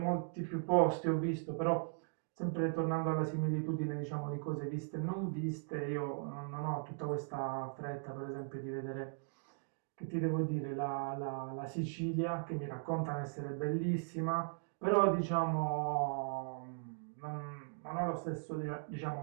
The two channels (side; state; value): left; silent; digital silence